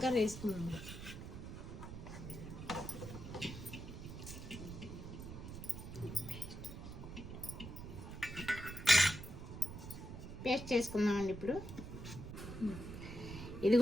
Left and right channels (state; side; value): noise; right; rumble, 9 dB below the sound